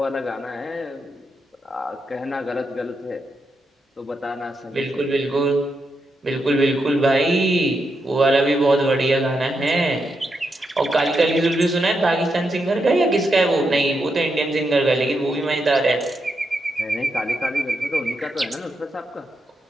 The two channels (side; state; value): both; normal; correlation 0.84